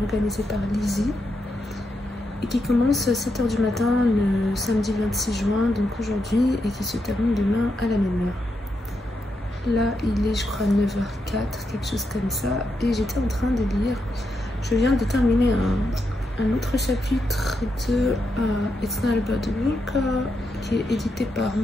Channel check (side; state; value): both; normal; correlation 0.83